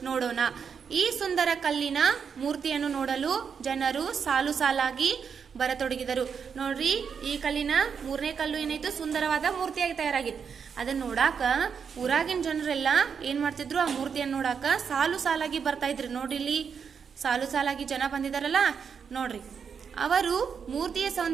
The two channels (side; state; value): left; quieter; 6.6 dB